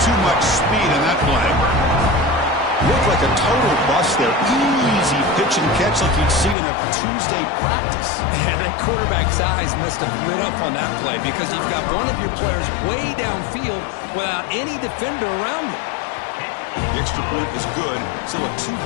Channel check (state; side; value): drops out; right; at 6.6 s